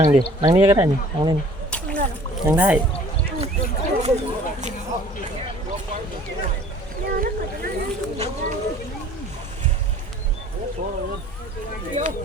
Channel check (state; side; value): normal; both; correlation 0.51